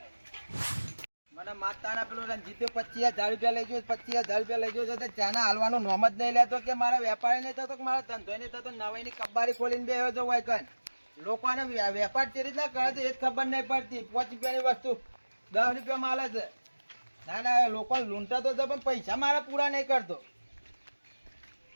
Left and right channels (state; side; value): inverted; both; correlation -1.00